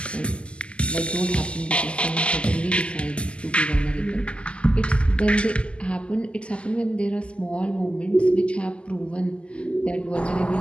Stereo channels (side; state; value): right; late; 0.054 ms